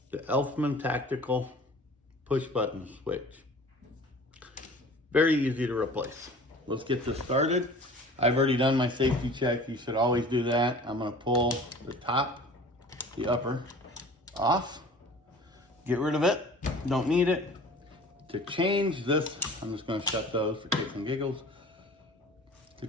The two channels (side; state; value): both; normal; correlation 0.44